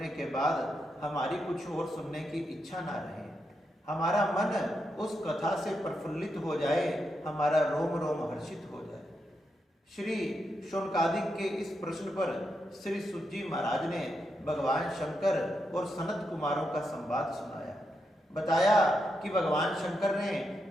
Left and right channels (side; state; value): both; normal; correlation 0.84